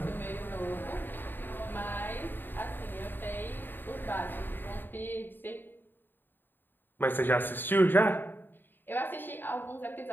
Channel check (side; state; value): right; late; 0.094 ms